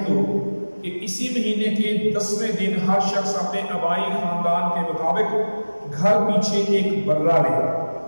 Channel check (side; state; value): both; inverted; correlation -1.00